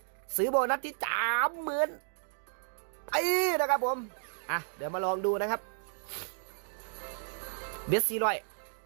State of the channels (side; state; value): left; silent; digital silence